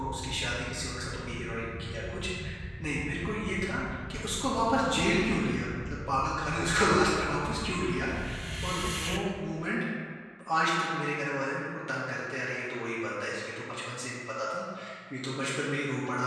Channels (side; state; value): both; identical; correlation 1.00